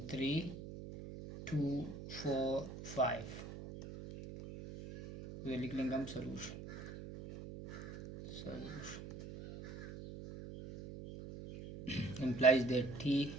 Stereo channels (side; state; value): right; noise; hum, 11 dB below the sound